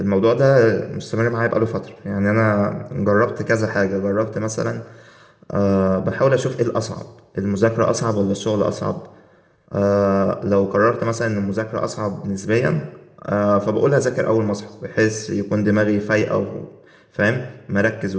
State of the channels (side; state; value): both; identical; correlation 1.00